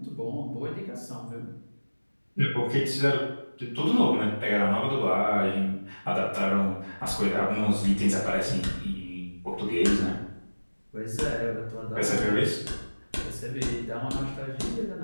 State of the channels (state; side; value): inverted; both; correlation -1.00